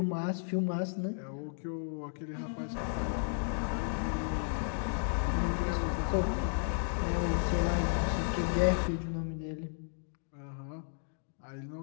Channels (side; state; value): right; silent; digital silence